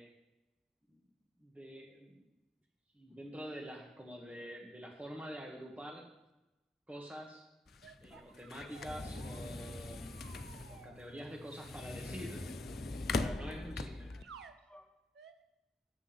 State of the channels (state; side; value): normal; both; correlation 0.81